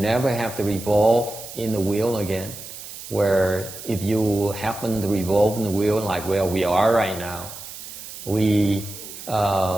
have to revolve in the wheel again. Where if you happen to revolve in the wheel like where we are right now, we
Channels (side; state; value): right; noise; hiss, 12 dB below the sound